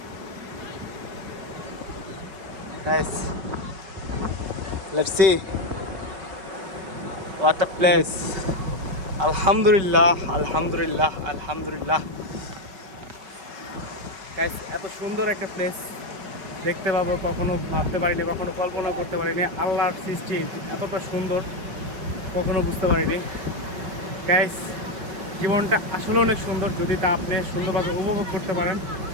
Guys let's see what a place. আলহামদুলিল্লাহ আলহামদুলিল্লাহ আলহামদুলিল্লাহ। গাইস এত সুন্দর একটা প্লেস দেখতে পাবো কখনো ভাবতে পারিনি, কখনো কল্পনা করতে পারিনি। আল্লাহর সৃষ্টি এতটা সুন্দর কখনো বুঝতে পারিনি। গাইস জীবনটা আসলে অনেক সুন্দর যদি তা আপনি সুন্দরভাবে উপভোগ করতে পারেন।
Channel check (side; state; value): left; late; 5.3 ms